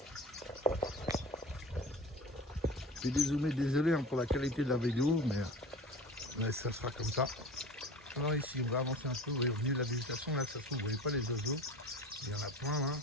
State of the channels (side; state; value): both; normal; correlation 0.37